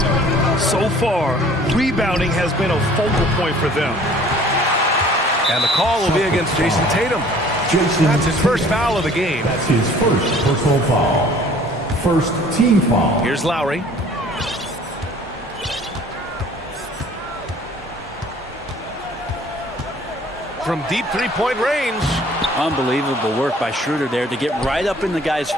So far, rebounding has been a focal point for them. And the call will be against Jason Tatum. That's his first foul of the game. That's his first personal foul. First team foul. Here's Lowry. From deep three-point range. Unbelievable work by Schroeder there to get right up in the guy's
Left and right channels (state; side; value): normal; both; correlation 0.53